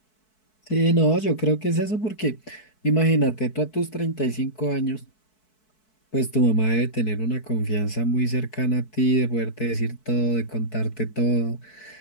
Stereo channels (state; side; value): late; right; 4.6 ms